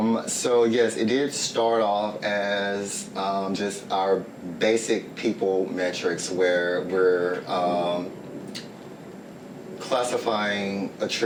So yes, it did start off as just our basic people metrics where we're classifying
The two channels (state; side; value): identical; both; correlation 1.00